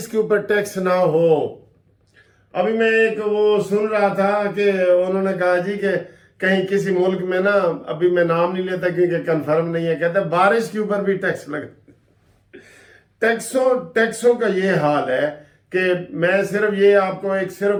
کے اوپر ٹیکس نہ ہو. ابھی میں ایک وہ سن رہا تھا کہ انہوں نے کہا جی کہ کہیں کسی ملک میں نا، ابھی میں نام نہیں لیتا کیونکہ کنفرم نہیں ہے، کہتے ہیں بارش کے اوپر بھی ٹیکس لگا. ٹیکسوں کا یہ حال ہے کہ میں صرف یہ آپ کو صرف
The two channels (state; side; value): identical; both; correlation 1.00